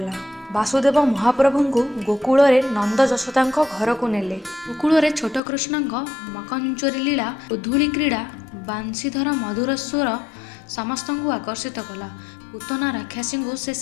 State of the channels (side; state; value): right; drops out; at 5.4 s